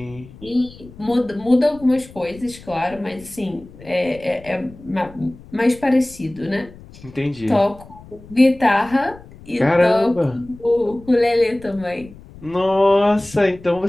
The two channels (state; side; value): noise; left; rumble, 20 dB below the sound